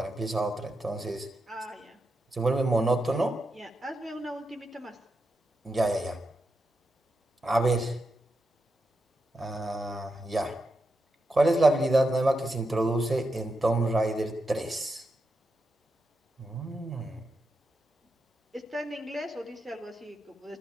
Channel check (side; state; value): both; normal; correlation 0.86